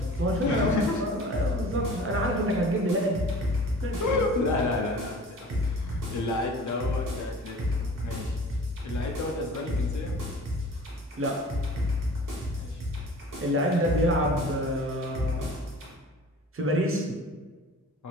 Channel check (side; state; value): both; normal; correlation 0.43